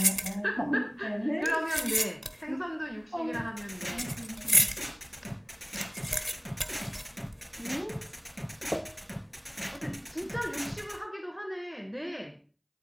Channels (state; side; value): identical; both; correlation 1.00